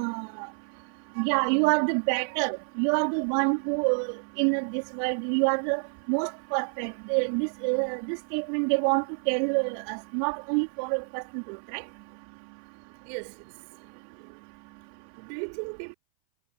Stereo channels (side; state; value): left; silent; 59 dB below the other